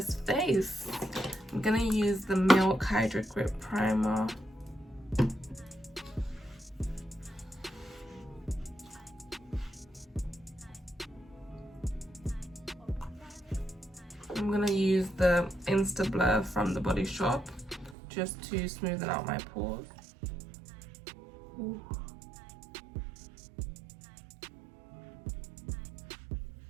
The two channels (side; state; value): left; drops out; at 17.9 s